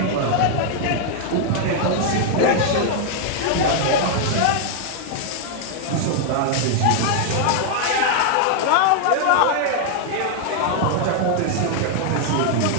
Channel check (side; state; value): both; different; correlation 0.00